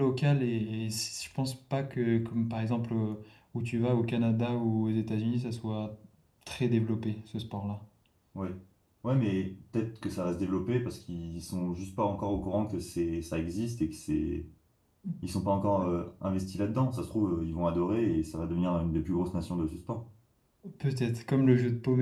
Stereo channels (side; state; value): both; identical; correlation 1.00